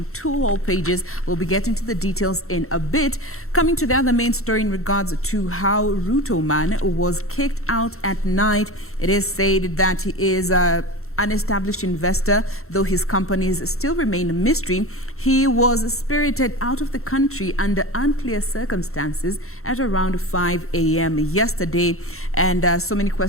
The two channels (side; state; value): right; late; 0.63 ms